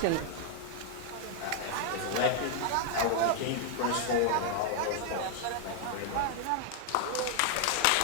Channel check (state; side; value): different; both; correlation 0.00